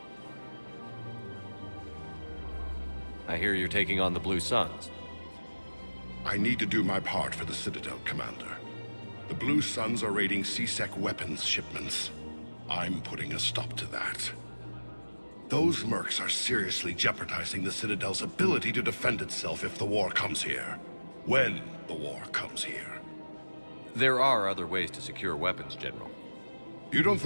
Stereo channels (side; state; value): both; inverted; correlation -1.00